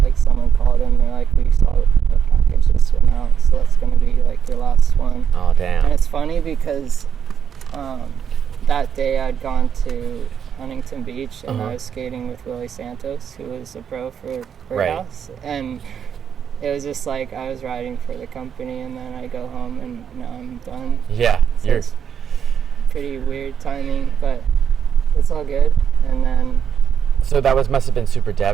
called in, they're like, "We saw a package just went out, so that's gonna be like your last one." Oh, damn. And it's funny because that day I'd gone to Huntington Beach, and Uh-huh. I was skating with Willie Santos, who was a pro for Birdhouse, and it was just like I was riding for the company, and then I go home and now I'm done. Yeah, So you're it's pretty weird timing, but it's all good. And then so that must have been super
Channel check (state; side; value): quieter; left; 7.9 dB